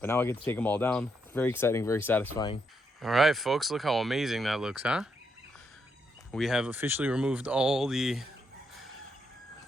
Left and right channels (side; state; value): both; normal; correlation 0.79